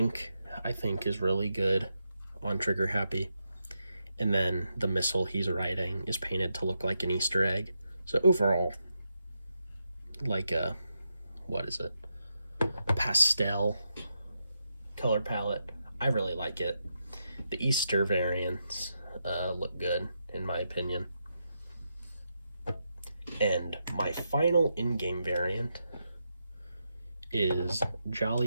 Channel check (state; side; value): inverted; both; correlation -0.84